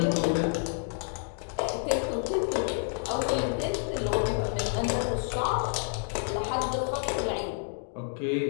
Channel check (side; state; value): right; silent; 58 dB below the other